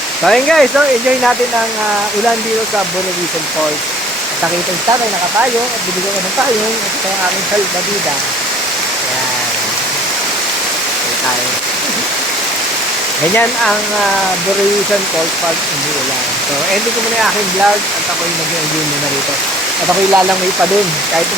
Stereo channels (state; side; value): noise; right; rumble, 28 dB below the sound